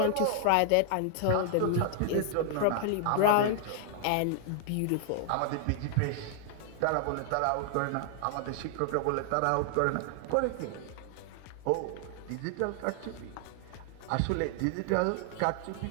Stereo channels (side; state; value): both; different; correlation 0.00